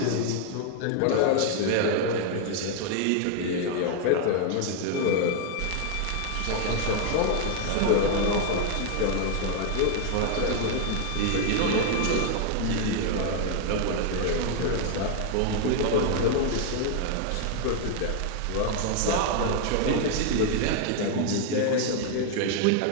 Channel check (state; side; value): different; both; correlation 0.00